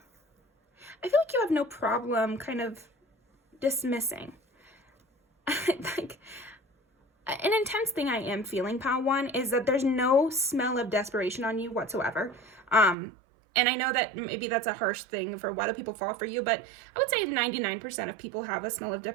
I feel like you have no problem kind of dismissing. Like, an intense thing I am feeling, pile 1, is that there's no smell of desperation on you whatsoever. And I know that maybe that's a harsh thing for why do people fall for you, but I would say 99% of people have a smell of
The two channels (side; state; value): left; drops out; at 13.0 s